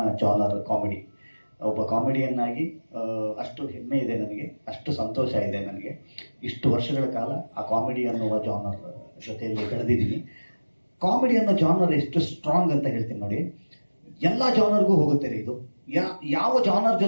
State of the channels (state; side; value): inverted; both; correlation -1.00